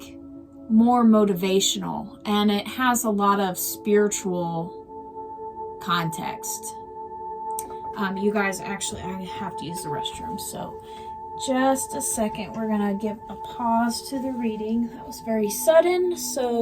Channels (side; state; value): both; identical; correlation 1.00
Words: more motivational and it has a lot of spiritual context. You guys, actually, I have to use the restroom, so just a second. We're gonna give a pause to the reading. That was very sudden,